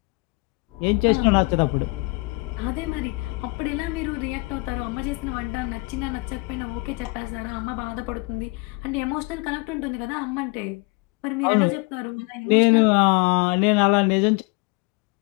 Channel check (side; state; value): right; quieter; 26.5 dB